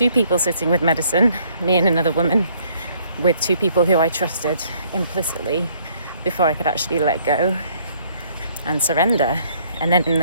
people sitting with medicine, me and another woman, with 2 people who I trusted implicitly before I could actually let go and surrender. And then in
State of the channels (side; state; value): both; inverted; correlation -0.64